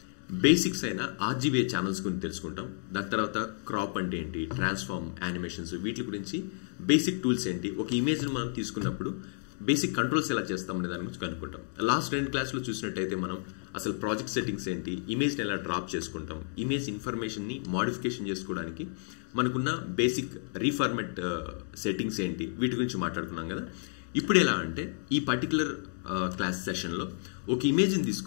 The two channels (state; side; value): silent; right; digital silence